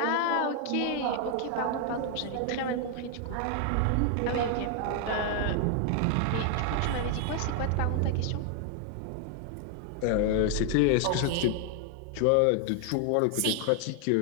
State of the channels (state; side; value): different; both; correlation 0.00